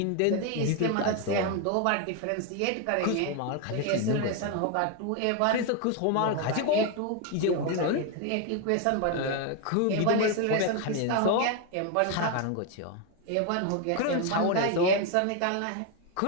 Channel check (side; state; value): both; different; correlation 0.01